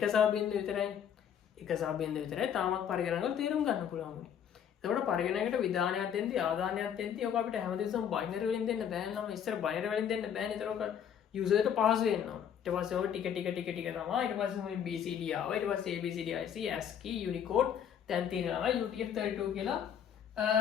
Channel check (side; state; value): right; quieter; 8.7 dB